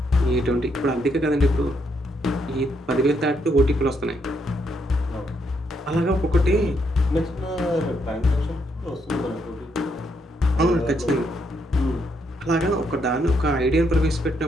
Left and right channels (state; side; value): normal; both; correlation 0.76